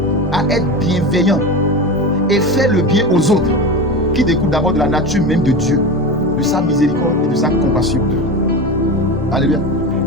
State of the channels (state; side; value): normal; both; correlation 0.25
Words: à être bienveillant et faire le bien aux autres, qui découle d'abord de la nature même de Dieu, de sa miséricorde et de sa compassion. Alléluia.